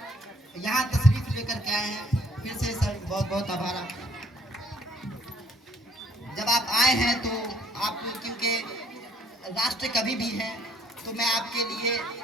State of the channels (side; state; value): both; normal; correlation 0.61